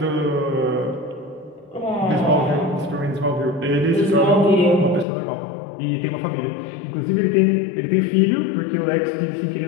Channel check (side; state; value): right; drops out; at 5.1 s